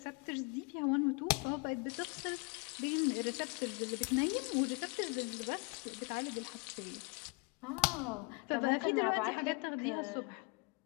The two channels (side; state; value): right; quieter; 32.1 dB